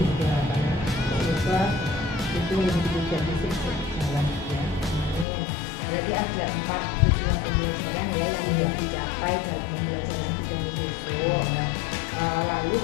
gitu harapannya. Semoga itu yang ditujukan bisa berjalan, ya. Berarti ada 4 tujuan pembelajaran ya yang ingin dicapai dalam pembelajaran Bu Dani besok. Lalu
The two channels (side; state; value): right; drops out; at 5.2 s